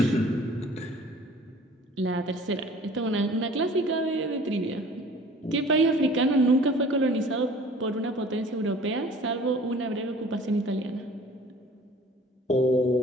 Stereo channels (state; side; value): normal; both; correlation 0.48